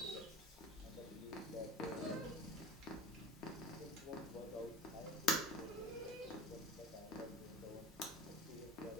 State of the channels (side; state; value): both; normal; correlation 0.34